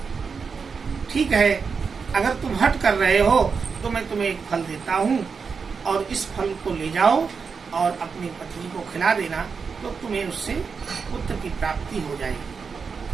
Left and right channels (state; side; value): quieter; left; 5.5 dB